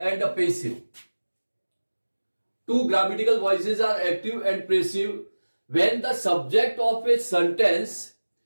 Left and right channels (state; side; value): inverted; both; correlation -1.00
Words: passive. Two grammatical voices are active and passive when the subject of a sentence